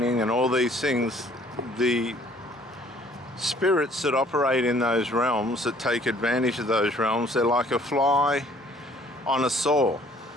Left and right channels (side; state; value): both; normal; correlation 0.58